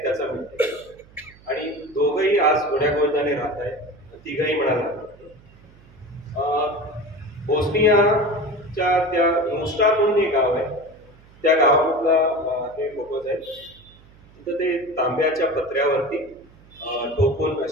त्याचा मिळते. आणि दोघंही आज गोड्यागोविंदाने राहत आहेत, तिघही म्हणाला. बोस्नियाच्या त्या मोस्टा म्हणून एक गाव आहे, त्या गावामधला हे फोटोज आहेत. तिथं ते तांब्याच्या पत्र्यावरती ठोकून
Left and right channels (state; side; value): noise; right; hum, 25 dB below the sound